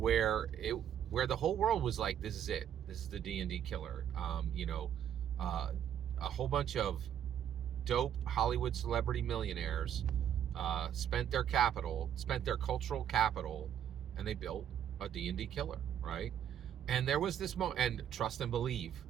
the whole world was like, this is it. This is the D&D killer. A whole bunch of dope Hollywood celebrity millionaires spent their cultural capital, and they built a D&D killer, right? And there was this moment, and trust and believe,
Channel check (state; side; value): quieter; left; 9.7 dB